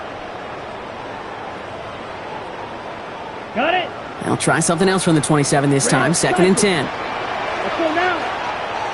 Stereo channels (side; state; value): both; identical; correlation 1.00